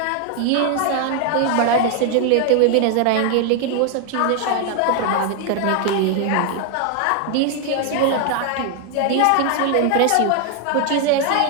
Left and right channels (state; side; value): different; both; correlation 0.00